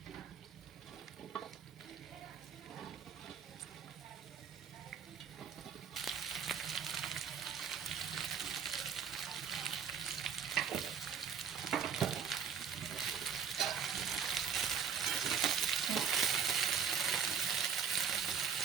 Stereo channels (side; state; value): left; quieter; 7.1 dB